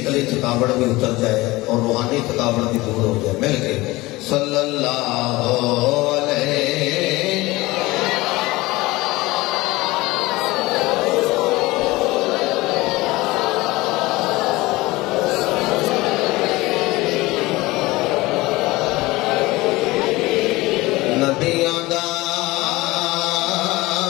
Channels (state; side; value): quieter; right; 20.5 dB